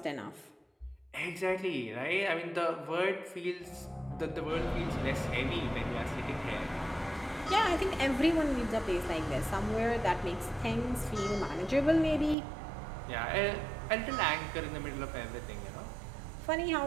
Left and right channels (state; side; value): drops out; left; at 12.4 s